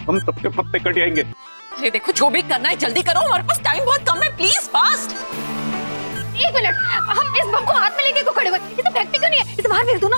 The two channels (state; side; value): inverted; both; correlation -1.00